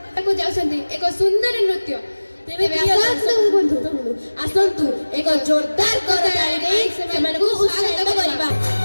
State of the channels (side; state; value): both; inverted; correlation -1.00